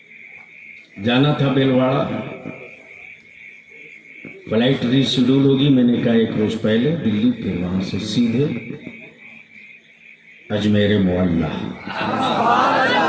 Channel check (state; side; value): identical; both; correlation 1.00